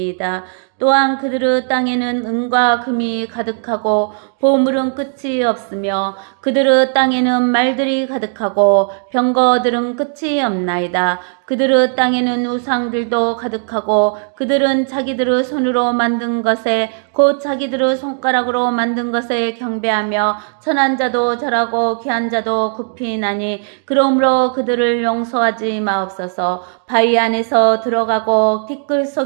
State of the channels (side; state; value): left; silent; 65 dB below the other